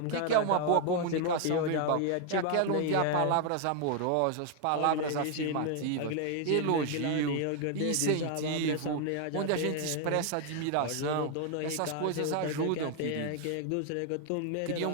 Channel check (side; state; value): both; different; correlation 0.00